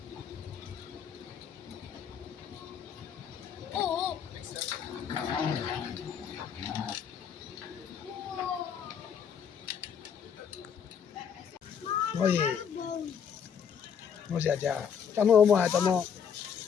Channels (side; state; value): right; quieter; 7.5 dB